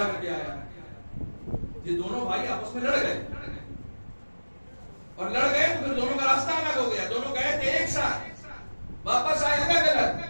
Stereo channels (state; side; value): inverted; both; correlation -1.00